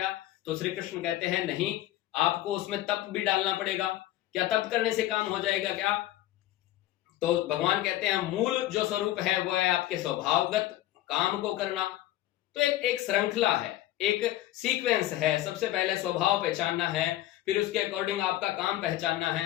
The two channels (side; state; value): right; quieter; 14.7 dB